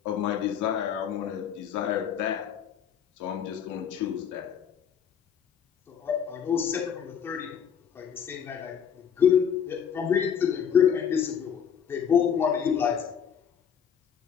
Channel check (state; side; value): quieter; right; 8.0 dB